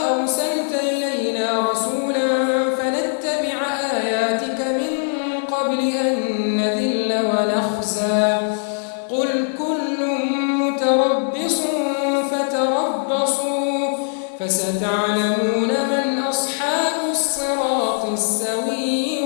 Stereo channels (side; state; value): right; silent; 60 dB below the other